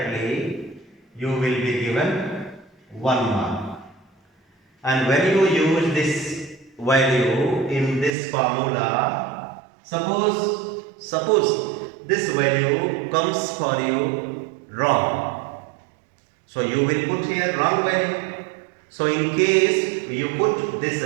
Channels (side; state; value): left; drops out; at 8.1 s